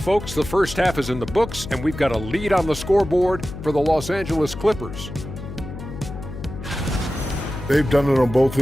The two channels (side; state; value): left; noise; hum, 10 dB below the sound